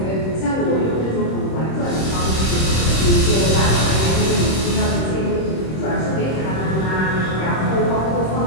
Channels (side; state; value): right; late; 26 ms